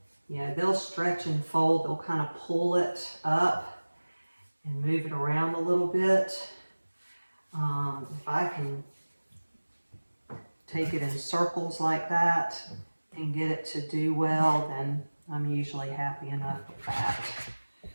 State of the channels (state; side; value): inverted; both; correlation -1.00